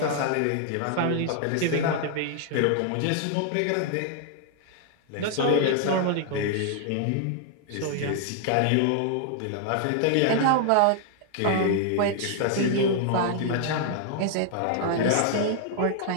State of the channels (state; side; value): different; both; correlation 0.00